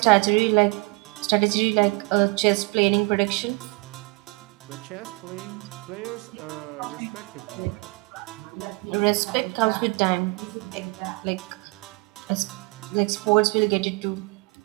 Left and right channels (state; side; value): quieter; left; 27.9 dB